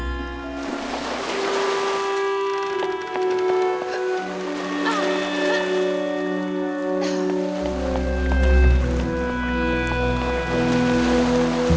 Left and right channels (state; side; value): identical; both; correlation 1.00